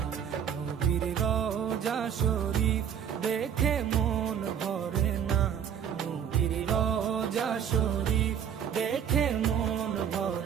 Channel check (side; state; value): left; quieter; 8.5 dB